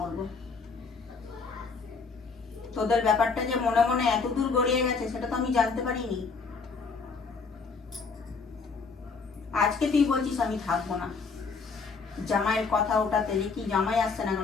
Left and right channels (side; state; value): right; quieter; 4.8 dB